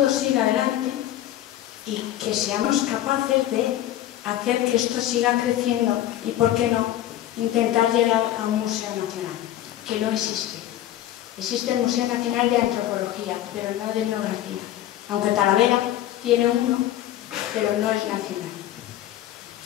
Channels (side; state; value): right; quieter; 13.0 dB